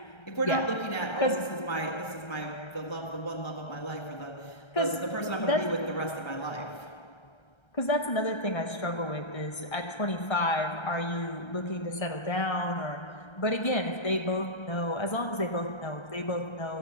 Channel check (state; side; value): late; right; 1.3 ms